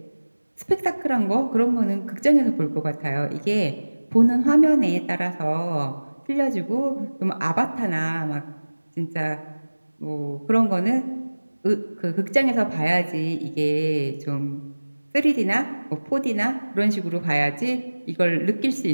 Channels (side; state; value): both; inverted; correlation -1.00